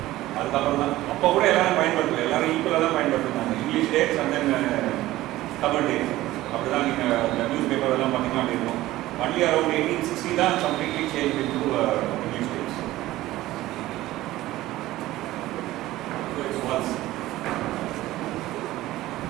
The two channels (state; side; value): quieter; left; 16.4 dB